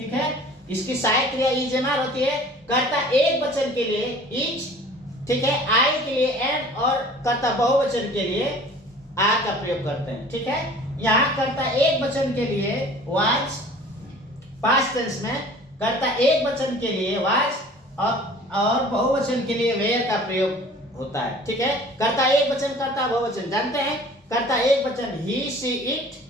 है, इसकी सहायक क्रिया इज एम आर होती है। कर्ता एक वचन के लिए इज, ठीक है, आई के लिए एम, और कर्ता बहुवचन के लिए आर का प्रयोग करते हैं, ठीक है। यहाँ कर्ता एक वचन के लिए वाज, पास्ट टेंस में कर्ता एक वचन के लिए वाज और बहुवचन के लिए वेयर का प्रयोग होता है, ठीक है। कर्ता एक वचन, कर्ता बहुवचन जानते हैं, कर्ता एक वचन ही सी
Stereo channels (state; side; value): normal; both; correlation 0.47